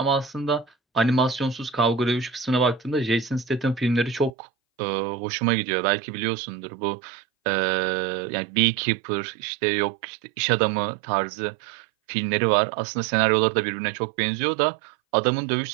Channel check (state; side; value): drops out; left; at 4.3 s